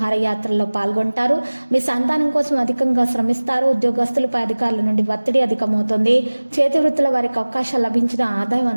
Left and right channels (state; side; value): inverted; both; correlation -1.00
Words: పాల్గొంటారు. మీ సంతానం కోసం అధికంగా శ్రమిస్తారు. ఉద్యోగస్తులపై అధికారుల నుండి ఒత్తిడి అధికమవుతుంది. చేతి వృత్తుల వారికి అవకాశాలు లభించిన ఆదాయం